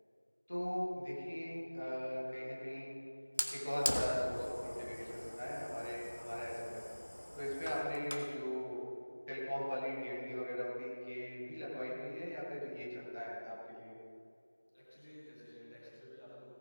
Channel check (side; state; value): both; inverted; correlation -1.00